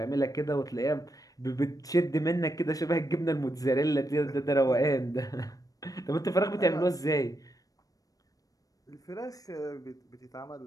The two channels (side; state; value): right; late; 0.17 ms